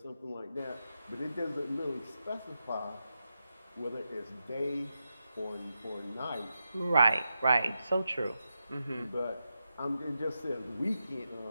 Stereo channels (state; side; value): inverted; both; correlation -0.88